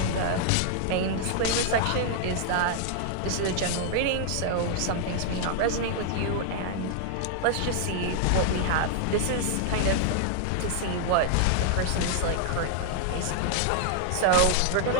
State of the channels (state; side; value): different; both; correlation -0.01